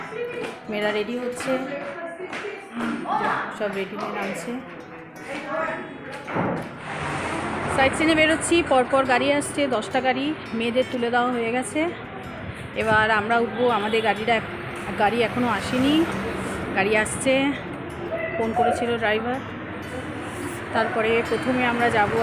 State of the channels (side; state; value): both; identical; correlation 1.00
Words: মেয়েরা রেডি হচ্ছে, সব রেডি হয়ে নামছে। সাইট সিনে বেরোচ্ছি, পরপর গাড়ি আসছে, 10টা গাড়ি। মেয়েদের তুলে দেওয়া হয়ে গেছে, এবার আমরা উঠবো। আমাদের গাড়ি এখনও আসেনি, গাড়ি আসছে, ফোন করেছিল ড্রাইভার। তারপরে প্রথমে আমরা যাব